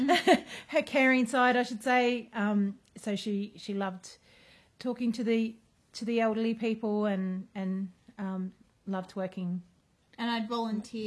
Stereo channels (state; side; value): identical; both; correlation 1.00